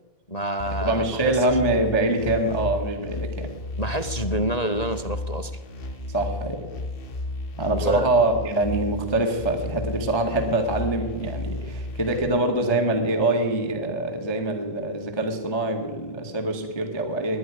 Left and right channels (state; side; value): late; right; 1.9 ms